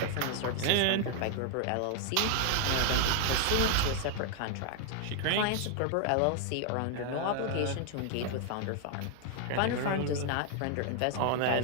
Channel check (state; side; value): different; both; correlation 0.00